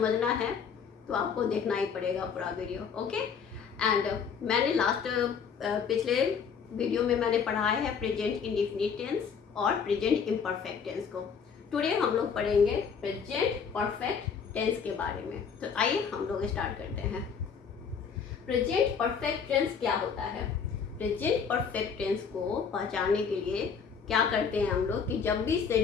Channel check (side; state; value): right; quieter; 6.5 dB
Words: है तो आपको देखना ही पड़ेगा पूरा वीडियो। ओके, एंड मैंने पिछले वीडियो में मैंने पढ़ाया है प्रेजेंट इंडेफिनिट टेंस और प्रेजेंट इम्परफेक्ट टेंस को। टुडे हम लोग पढ़ेंगे प्रेजेंट परफेक्ट टेंस के बारे में। तो आइए हम लोग स्टार्ट करते हैं। प्रेजेंट परफेक्ट टेंस क्या होता है? प्रेजेंट परफेक्ट टेंस को पहचानने के लिए क्या करते हैं हम लोग कि जब भी